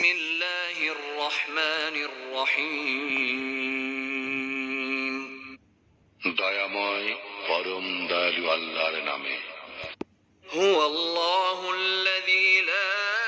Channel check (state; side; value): identical; both; correlation 1.00